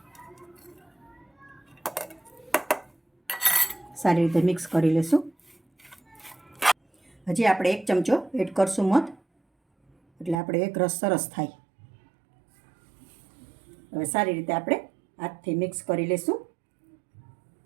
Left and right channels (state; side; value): drops out; left; at 10.4 s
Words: સારી રીતે મિક્સ કરી લેશું. હજી આપણે 1 ચમચો એડ કરશું મધ, એટલે આપણે એક રસ સરસ થાય. હવે સારી રીતે આપણે હાથથી મિક્સ કરી લેશું.